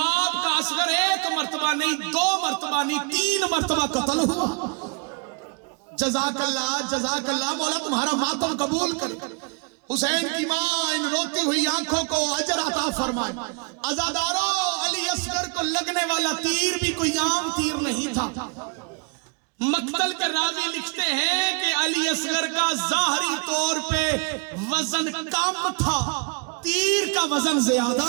کا اصغر 1 مرتبہ نہیں، 2 مرتبہ نہیں، 3 مرتبہ قتل ہوا. جزاک اللہ مولا تمہارا ماتم قبول کر. حسین کی ماں ان روتی ہوئی آنکھوں کو اجر عطا فرمائے. عزاداروں، علی اصغر کو لگنے والا تیر بھی کوئی عام تیر نہیں تھا. مقتل کے راوی لکھتے ہیں کہ علی اصغر کا ظاہری طور پہ وزن کم تھا، تیر کا وزن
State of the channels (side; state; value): left; quieter; 33.1 dB